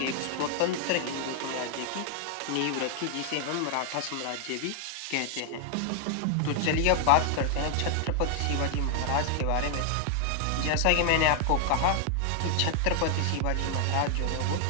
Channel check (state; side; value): different; both; correlation 0.00